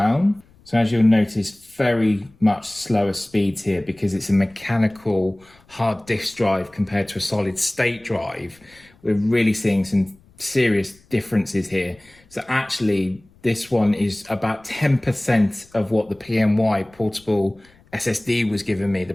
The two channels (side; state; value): left; noise; rumble, 29 dB below the sound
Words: So as you'll notice, very much slower speeds here because it's a mechanical hard disk drive compared to a solid state drive. We're really seeing some serious differences here. So actually, this one is about 10% of what the PNY Portable SSD was giving me, the